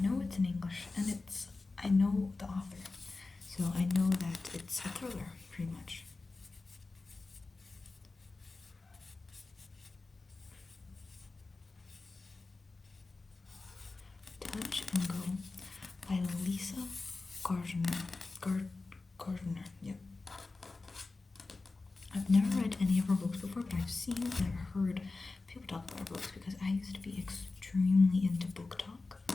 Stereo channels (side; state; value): right; quieter; 3.6 dB